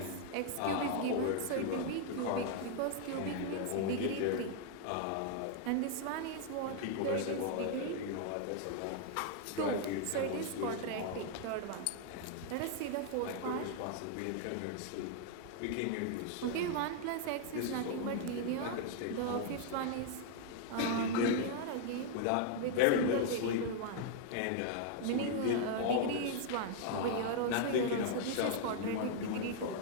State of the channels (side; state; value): both; different; correlation 0.00